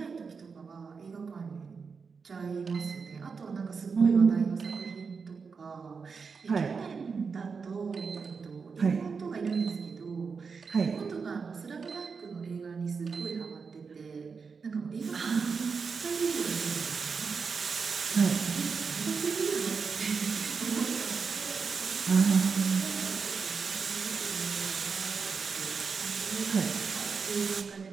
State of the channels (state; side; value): quieter; left; 5.3 dB